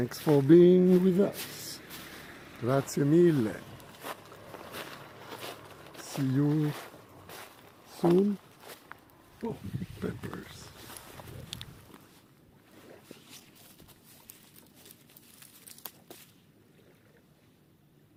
for being with us. Grazie mille. See you soon. Oh, peppers.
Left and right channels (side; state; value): both; identical; correlation 1.00